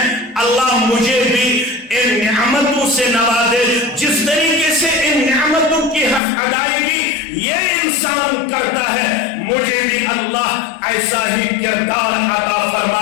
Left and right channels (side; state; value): right; drops out; at 6.2 s